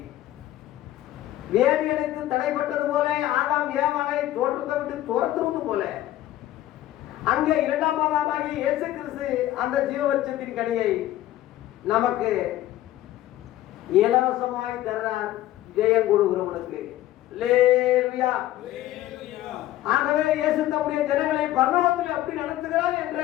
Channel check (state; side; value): quieter; right; 14.3 dB